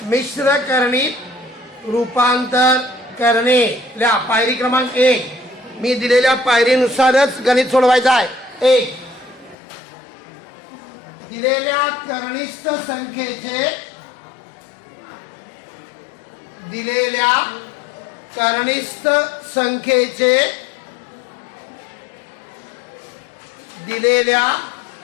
मिश्र करणीत रूपांतर करणे। ल्या पायरी क्रमांक 1 मी दिलेल्या पायरीनुसारच गणित सोडवायचं आहे। 1 दिलेल्या करणीस्थ संख्येचे दिलेल्या करणीस्थ संख्येचे दिलेल्या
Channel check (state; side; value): drops out; right; at 9.6 s